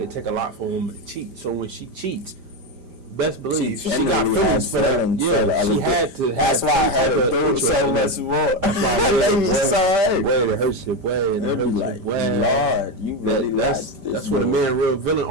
it take a lot for a woman to cheat. So when she cheats, best believe she got genuinely feelings has for that. feelings for the Yeah, other she had to. That's have why I some type had of to do interest so in much that. more. That's why That made me so hurt. Way it hurts your way, and it And hurts be your like, way. Lord, you really That's like this. that's where the man real villain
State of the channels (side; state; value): left; late; 5.0 ms